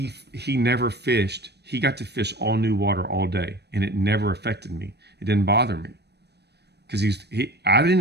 never fished. He got to fish all new water all day, and it never affected me. It didn't bother me. Because I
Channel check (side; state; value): left; late; 0.48 ms